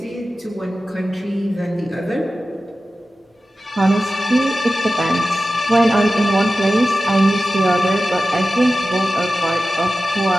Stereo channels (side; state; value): both; normal; correlation 0.94